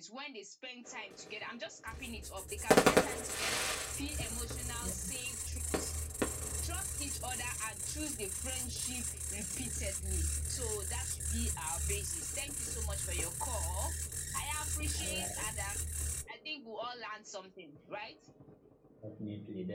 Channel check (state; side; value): identical; both; correlation 1.00